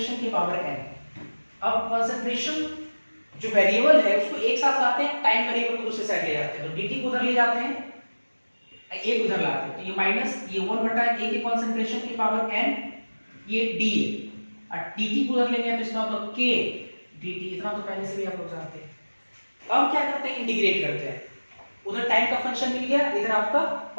के पावर n। अब कॉन्सेंट्रेशन जो वेरिएबल है उसको एक साथ लाते हैं, टाइम वेरिएबल को दूसरे साइड ले जाते हैं, तो dt को उधर ले जाते हैं, a को उधर लाते हैं, तो ये माइनस ये 1 बटा a के कॉन्सेंट्रेशन की पावर n, ये d है, और dt को उधर लेंगे तो इसका मतलब k dt, इतना तो पहले से भी आप लोग जानते हैं। अब क्या करते हैं, इंटीग्रेट करते हैं, उधर टाइम का फंक्शन मिल गया, इधर आपका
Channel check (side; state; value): both; inverted; correlation -1.00